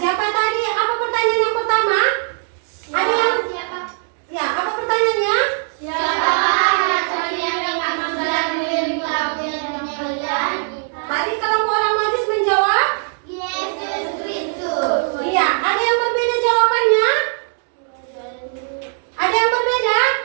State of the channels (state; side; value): silent; left; 58 dB below the other